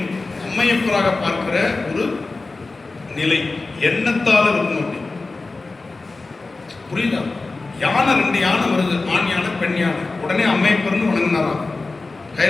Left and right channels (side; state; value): right; quieter; 3.6 dB